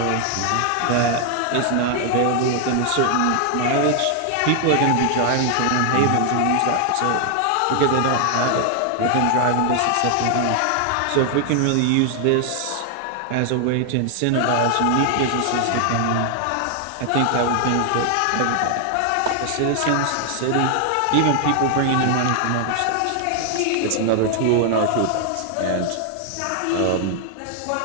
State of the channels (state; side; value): different; both; correlation 0.00